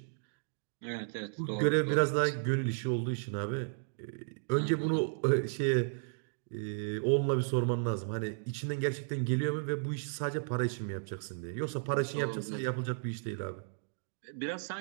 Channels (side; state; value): left; silent; digital silence